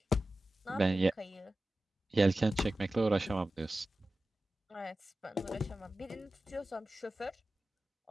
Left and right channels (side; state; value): both; normal; correlation 0.94